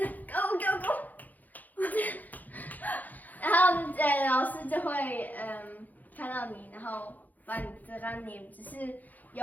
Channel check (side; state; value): right; late; 0.082 ms